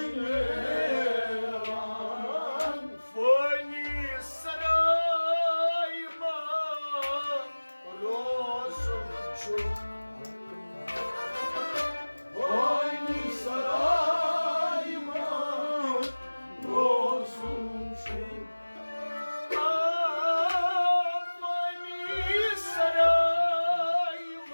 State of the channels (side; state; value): both; inverted; correlation -1.00